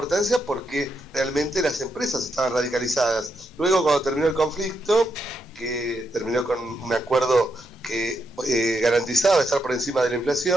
porque realmente las empresas estaban radicalizadas. Luego, cuando terminó el conflicto, que terminó con un acuerdo que garantizaba estar por encima de la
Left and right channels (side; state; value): both; normal; correlation 0.81